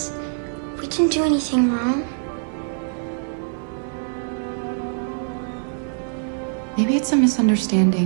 We didn't do anything wrong. Maybe it's a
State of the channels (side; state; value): left; silent; digital silence